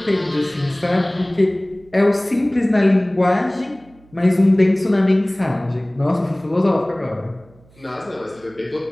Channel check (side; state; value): right; noise; hum, 28 dB below the sound